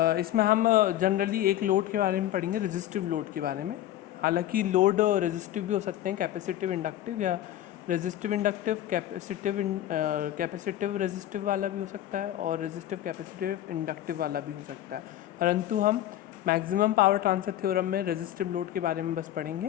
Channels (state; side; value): quieter; right; 12.9 dB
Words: इसमें हम जनरली एक लोड के बारे में पढ़ेंगे, रेजिस्टिव लोड के बारे में। हालांकि लोड रेजिस्टिव भी हो सकते हैं, कैपेसिटिव इंडक्टिव, या रेजिस्टिव इंडक्टिव कैपेसिटिव रेजिस्टिव वाला भी हो सकता है, और रेजिस्टिव कैपेसिटिव इंडक्टिव वाला भी हो सकता है। परंतु हम मैक्सिमम पावर ट्रांसफ़र थ्योरम में रेजिस्टिव लोड के बारे में बस